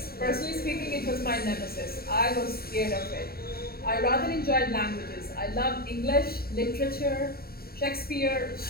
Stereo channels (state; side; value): late; right; 0.45 ms